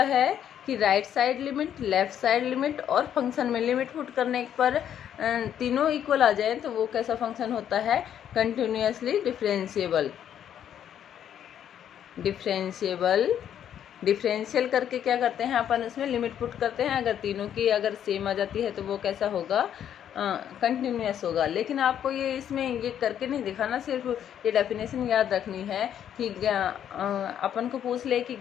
है कि right side limit, left side limit और फंक्शन में लिमिट पुट करने पर तीनों इक्वल आ जाए तो वो कैसा फंक्शन होता है, कंटिन्यूअसली डिफरेंशिएबल। डिफरेंशियल करके क्या करते हैं अपन, उसमें लिमिट पुट करते हैं। अगर तीनों की अगर सेम आ जाती है तो वो कैसा होगा, कंटिन्यूअस होगा। लेकिन आपको ये इसमें ये करके नहीं दिखाना, सिर्फ ये डेफिनेशन याद रखनी है कि अपन को पूछ ले कि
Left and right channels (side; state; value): right; quieter; 9.7 dB